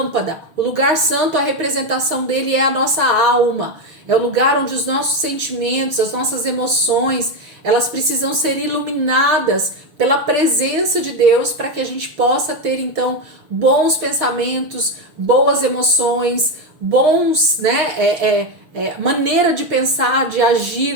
O lugar santo, a representação dele é a nossa alma. É o lugar onde os nossos sentimentos, as nossas emoções, elas precisam ser iluminadas pela presença de Deus para que a gente possa ter, então, bons pensamentos, boas emoções, bons, né, maneira de pensar, de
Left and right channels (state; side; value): late; left; 6.4 ms